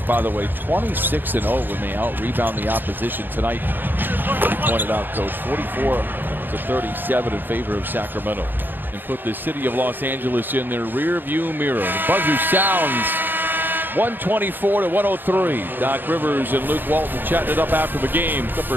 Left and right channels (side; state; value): left; late; 0.093 ms